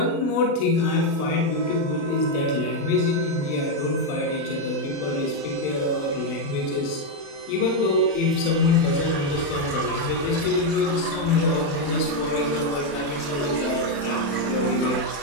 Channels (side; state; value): right; late; 36 ms